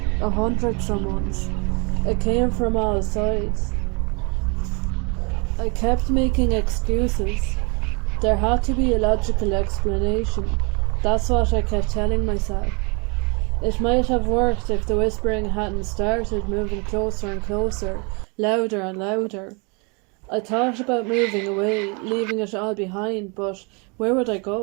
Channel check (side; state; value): left; quieter; 31.9 dB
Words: 100 someones. It came from all sides. I kept making excuses. There had to be a logical explanation. That's what I kept telling myself. It might have worked if the whispering hadn't started moving closer and closer, louder and louder. I thought about moving away, leaving it all behind, but where would I